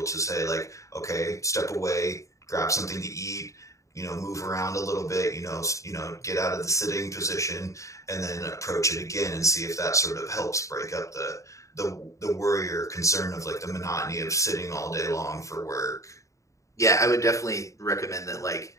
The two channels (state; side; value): late; right; 0.15 ms